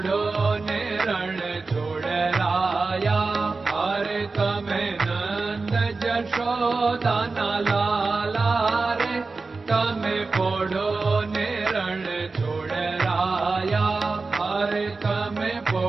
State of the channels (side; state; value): left; quieter; 3.9 dB